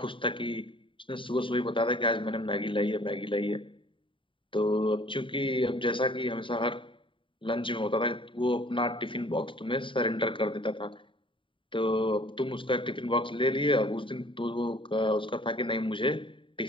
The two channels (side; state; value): right; late; 0.25 ms